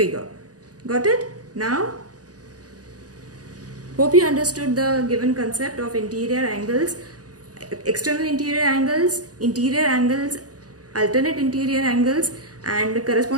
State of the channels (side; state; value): left; late; 0.68 ms